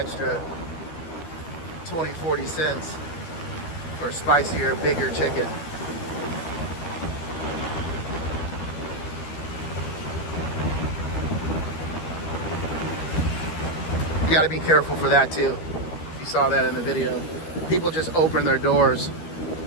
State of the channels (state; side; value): late; right; 12 ms